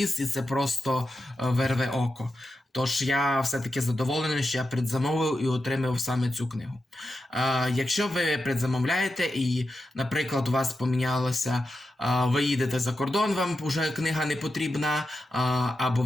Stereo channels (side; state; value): both; normal; correlation 0.89